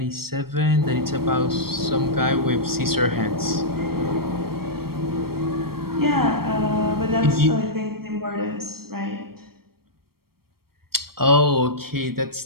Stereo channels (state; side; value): late; left; 0.94 ms